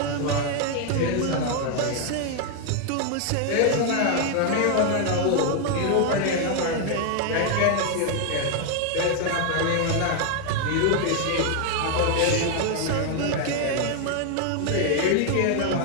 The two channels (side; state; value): both; different; correlation 0.00